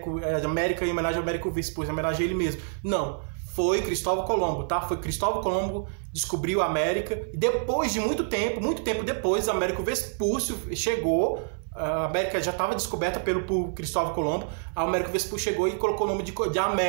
em homenagem ao Américo Vespúcio, em homenagem a ele mesmo. Não. Foi Cristóvão Colombo, tá? Foi Cristóvão Colombo descobriu a América e depois de muito tempo depois, Américo Vespúcio chegou. A América já estava descoberta por Cristóvão Colombo. A Américo Vespúcio chegou e colocou o nome de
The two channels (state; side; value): silent; left; 60 dB below the other